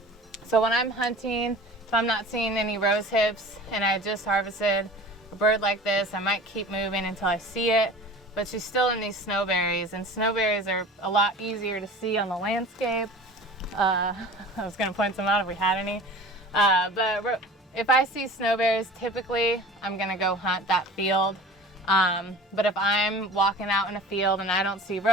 So when I'm hunting, if I'm not seeing any rose hips and I just harvested a bird like this, I might keep moving until I see it. But she's still in these snowberries, and snowberries are a lot easier to see on the landscape. I was going to point some out if we had any. But if I see snowberries, typically I'm going to go hunt that field. But if I'm walking out in a field and I don't see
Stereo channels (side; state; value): both; normal; correlation 0.41